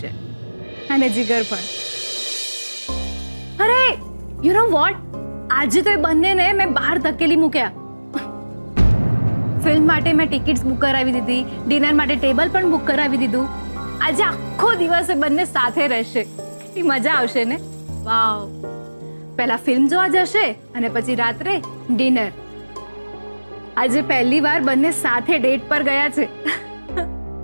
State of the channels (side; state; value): both; inverted; correlation -1.00